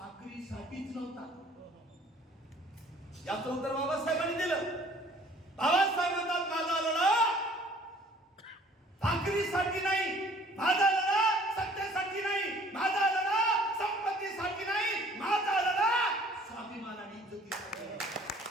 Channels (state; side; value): normal; both; correlation 0.54